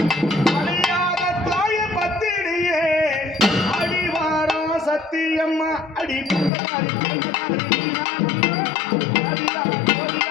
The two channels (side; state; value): right; drops out; at 6.5 s